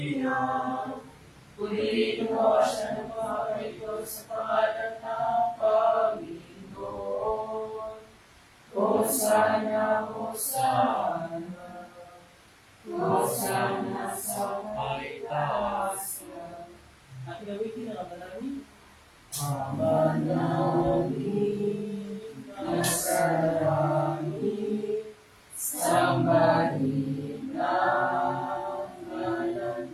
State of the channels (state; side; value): identical; both; correlation 1.00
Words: purihin nawa siya ng mga ito sa pangalan ng Panginoon. Hosana, Hosana, Hosana sa kaitaasan. At gamitin ang manalangin. Manalangin na sa langit, sambahin ang ngalan